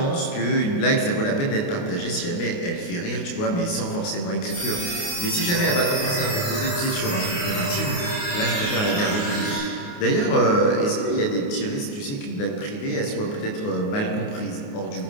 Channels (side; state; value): right; late; 29 ms